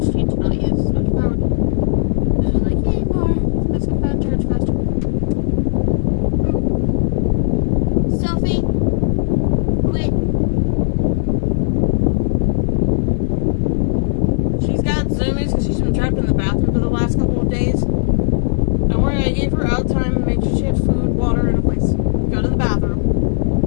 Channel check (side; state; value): right; silent; digital silence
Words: need to not use as much power. This is like, yay, more. Let's get that charge faster. Sophie, quit. She's got zoomies because she's been trapped in the bathroom for the last couple of days. Don't worry, I gave her out time and made sure she had food, water, and a place. Go to the bathroom.